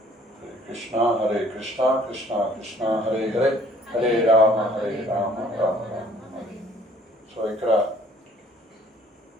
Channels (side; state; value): both; normal; correlation 0.57